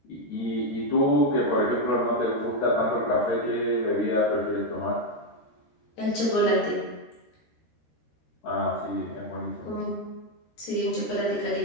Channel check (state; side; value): late; right; 13 ms